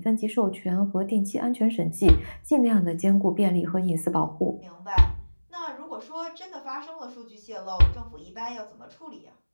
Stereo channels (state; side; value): inverted; both; correlation -1.00